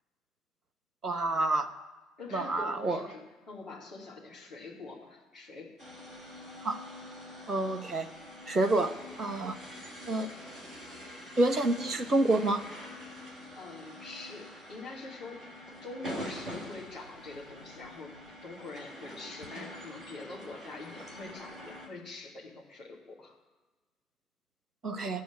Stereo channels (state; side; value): normal; both; correlation 0.71